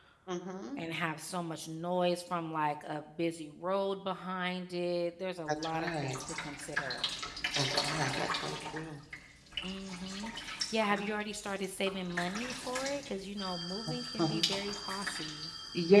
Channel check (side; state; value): both; identical; correlation 1.00